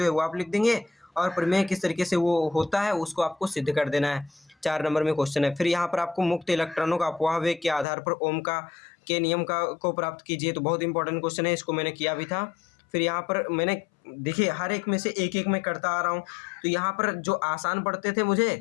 है वो आप लिख देंगे और प्रमेय किस तरीके से वो होता है उसको आपको सिद्ध कर देना है। 4 नंबर में क्वेश्चन है। फिर यहाँ पर आपको मुक्त इलेक्ट्रॉनों का अपवाह वेग के आधार पर ओम के नियम को प्राप्त कीजिए। तो बहुत इंपॉर्टेंट क्वेश्चन है, इसको मैंने किया भी था। फिर यहाँ पर मैंने देखिए हर एक में से एक एक मैं करता आ रहा हूँ, तो यहाँ पर जो आसान पढ़ते थे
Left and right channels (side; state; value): right; drops out; at 7.9 s